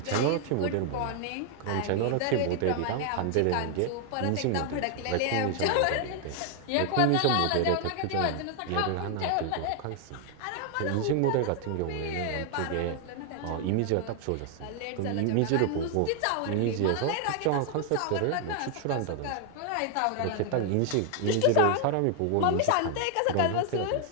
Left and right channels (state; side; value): different; both; correlation 0.00